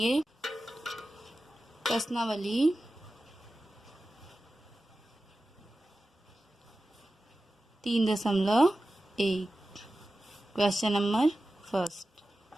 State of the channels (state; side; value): normal; both; correlation 0.94